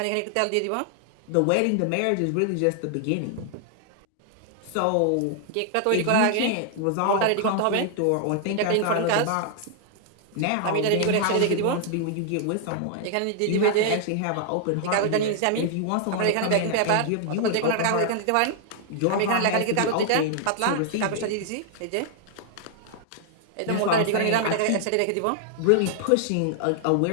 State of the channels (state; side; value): different; both; correlation 0.00